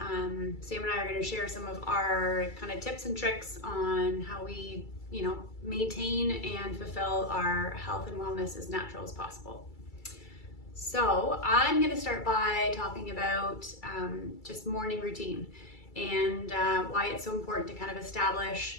Sam and I are going to share some of our kind of tips and tricks on how we, maintain and fulfill our health and wellness as natural as possible. So I'm going to start by talking about just morning routine and why it's so important to kind of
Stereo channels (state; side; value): late; right; 2.3 ms